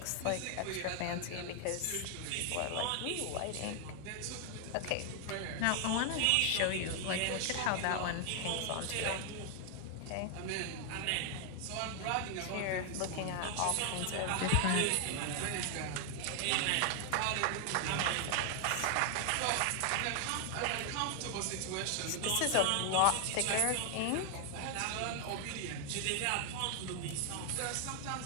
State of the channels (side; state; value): both; different; correlation 0.00